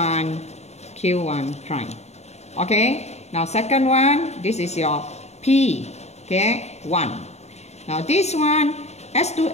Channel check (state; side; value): late; right; 0.32 ms